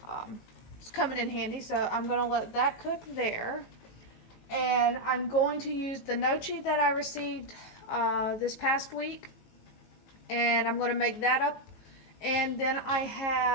It's coming in handy, so I'm gonna let that cook there. And I'm going to use the gnocchi that I received this past week, and I'm gonna make that up. And then I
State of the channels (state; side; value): late; right; 18 ms